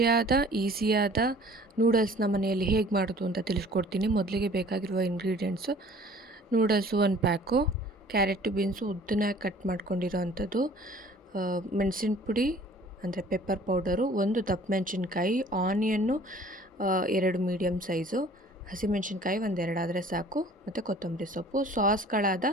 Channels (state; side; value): normal; both; correlation 0.51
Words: ಈಸಿಯಾದ ನೂಡಲ್ಸ್ನ ಮನೆಯಲ್ಲಿ ಹೇಗೆ ಮಾಡೋದು ಅಂತ ತಿಳಿಸ್ಕೊಡ್ತೀನಿ. ಮೊದಲಿಗೆ ಬೇಕಾಗಿರುವ ingredients: noodles 1 pack, carrot beans ಉದ್ದನಾಗಿ ಕಟ್ ಮಾಡ್ಕೊಂಡಿರೋ ಅಂಥದ್ದು, ಮೆಣಸಿನ ಪುಡಿ ಅಂದರೆ ಪೆಪ್ಪರ್ ಪೌಡರು, 1 ದಪ್ಪ ಮೆಣಸಿನ್ಕಾಯಿ, ಆನಿಯನ್ನು 2 ಮೀಡಿಯಮ್ ಸೈಜು, ಹಸಿಮೆಣಸಿನ್ಕಾಯಿ 1-2 ಆದರೆ ಸಾಕು, ಮತ್ತು ಕೊತ್ತಂಬರಿ ಸೊಪ್ಪು. ಸಾಸ್ಗಳಾದ